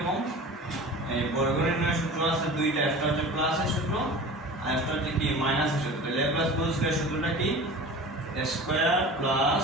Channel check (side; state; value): both; normal; correlation 0.37